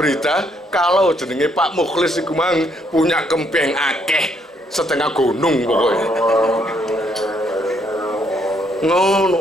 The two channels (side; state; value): both; normal; correlation 0.71